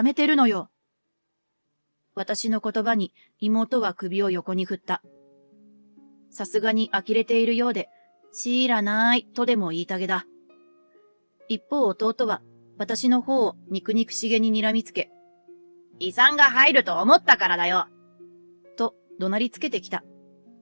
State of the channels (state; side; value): inverted; both; correlation -1.00